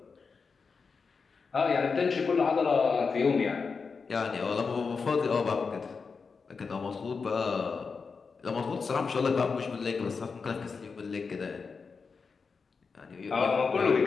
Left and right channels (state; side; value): quieter; right; 5.0 dB